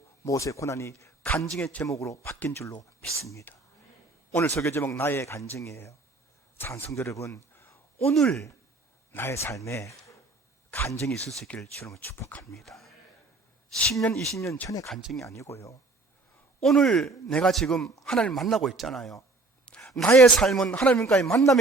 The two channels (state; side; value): quieter; left; 3.3 dB